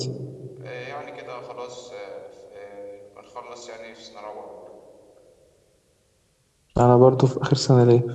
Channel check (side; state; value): both; identical; correlation 1.00